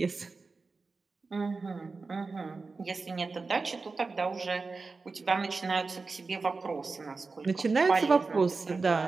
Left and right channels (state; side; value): quieter; left; 4.1 dB